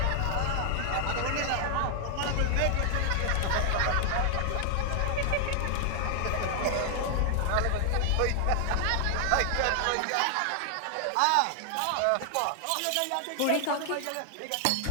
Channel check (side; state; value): both; different; correlation 0.00